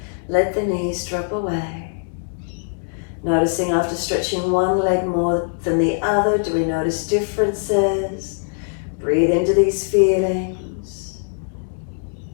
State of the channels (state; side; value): silent; right; digital silence